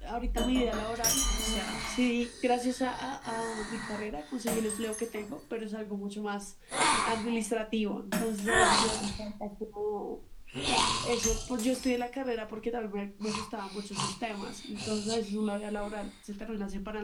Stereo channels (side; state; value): both; identical; correlation 1.00